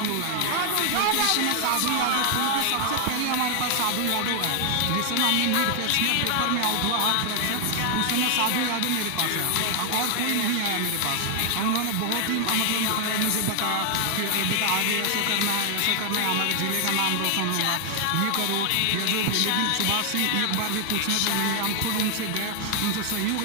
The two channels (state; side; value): different; both; correlation 0.00